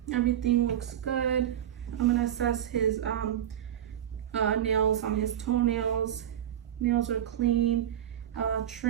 Everything looks good. I'm gonna assess his nails on his toenails. Nails are clean,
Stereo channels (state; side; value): quieter; left; 10.6 dB